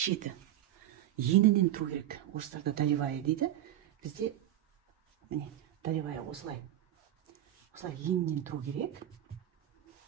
енінен тұру керек. Орыстарда долевая дейді. Бізде міне долевая осылай енінен тұру керек.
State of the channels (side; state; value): left; quieter; 12.6 dB